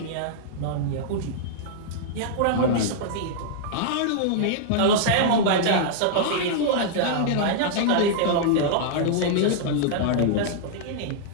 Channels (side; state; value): both; different; correlation -0.01